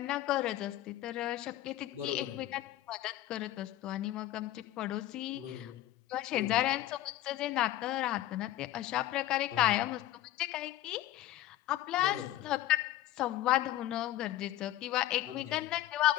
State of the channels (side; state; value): right; quieter; 14.6 dB